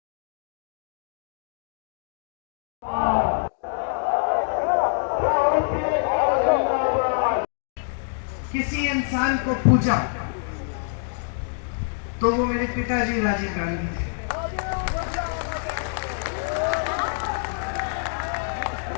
किसी इंसान को पूजा तो वो मेरे पिताजी राजीव गांधी थे।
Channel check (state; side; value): silent; right; digital silence